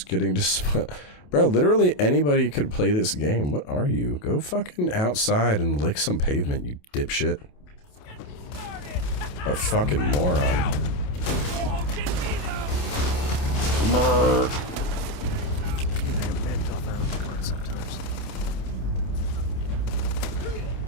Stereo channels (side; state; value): right; late; 28 ms